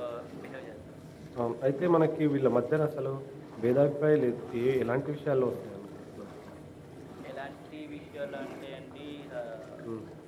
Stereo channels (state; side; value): identical; both; correlation 1.00